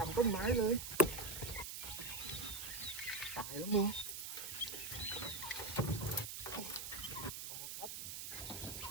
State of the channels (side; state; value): right; noise; hiss, 6 dB below the sound